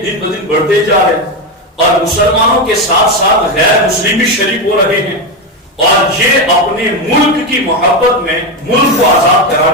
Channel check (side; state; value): both; normal; correlation 0.12